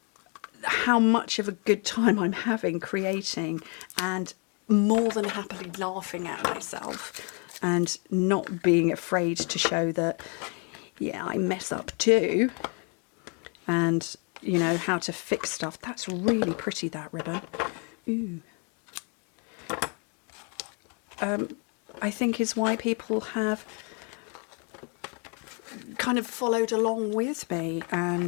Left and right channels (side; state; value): right; quieter; 37.2 dB